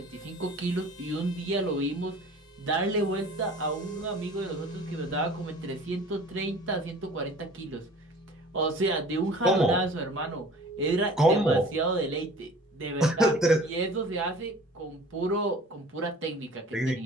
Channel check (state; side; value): normal; both; correlation 0.46